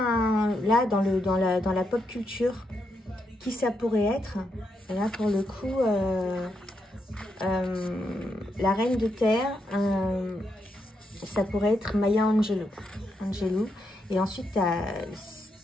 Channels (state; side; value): normal; both; correlation 0.81